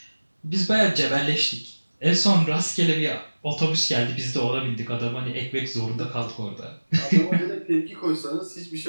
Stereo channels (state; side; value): inverted; both; correlation -1.00